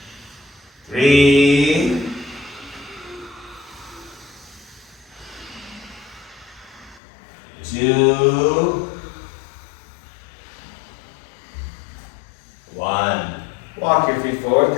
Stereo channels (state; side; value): drops out; right; at 7.0 s